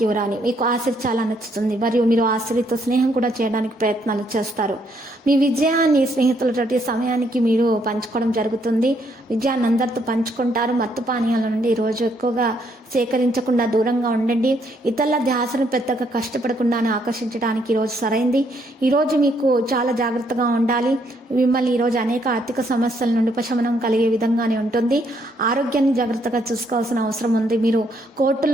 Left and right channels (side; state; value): both; normal; correlation 0.71